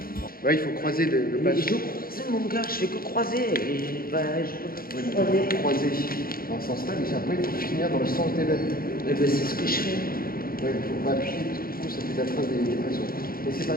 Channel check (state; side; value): late; right; 0.42 ms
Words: Ouais, il faut croiser le Mais passage. je croise mon gars, je fais que croiser. Et bah, je peux Ouais, croiser. croiser dans ce sens-là, mais après, il faut finir dans le sens des lèvres. Mais bah, c'est ce que je fais. Ouais, il faut pas appuyer parce que du coup, ça fait la trace des pressions. Mais c'est pas